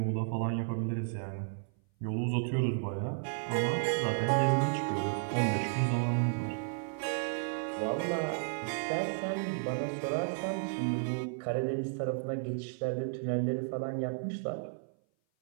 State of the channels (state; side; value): silent; left; 56 dB below the other